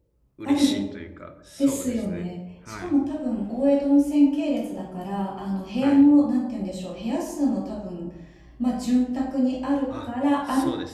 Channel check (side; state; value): both; identical; correlation 1.00